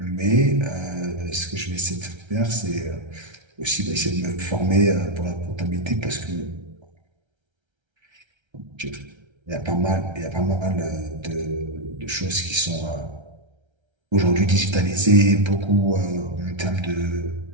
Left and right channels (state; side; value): late; left; 1.3 ms